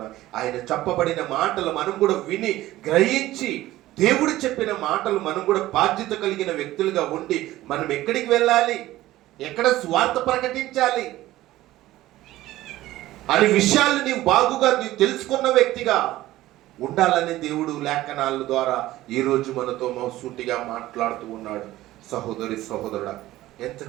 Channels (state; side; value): quieter; left; 15.9 dB